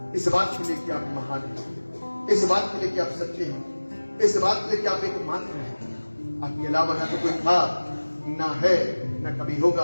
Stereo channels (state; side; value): inverted; both; correlation -1.00